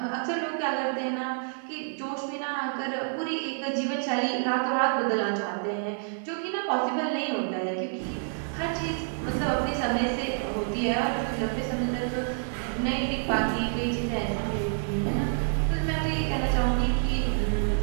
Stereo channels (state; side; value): silent; left; digital silence